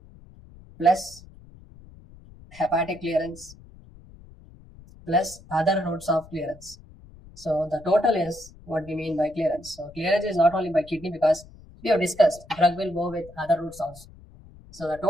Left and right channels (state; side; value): noise; left; rumble, 21 dB below the sound